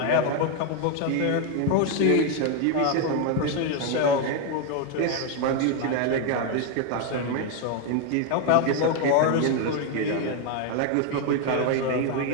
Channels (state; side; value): different; both; correlation 0.01